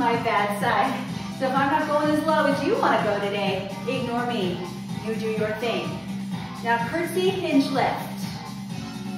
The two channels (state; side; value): identical; both; correlation 1.00